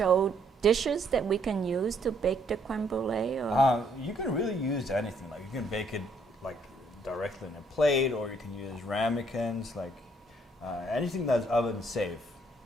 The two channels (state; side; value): normal; both; correlation 0.68